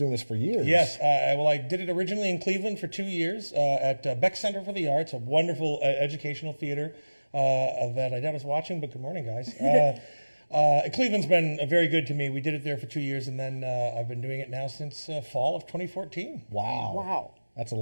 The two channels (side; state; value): both; inverted; correlation -1.00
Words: this for years. Yes. Well, I did it originally in Cleveland for 2 years at Beck Center for the Arts, a wonderful educational theater that I was watching, but good morning, guys. Cleveland's been very good to me. We did it there for 2 years, and then I've been doing it now since fall of 2014. Wow. Wow. That's a